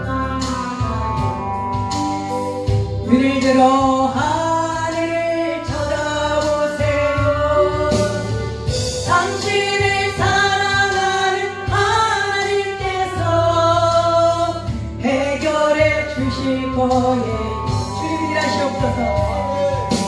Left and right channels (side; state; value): both; identical; correlation 1.00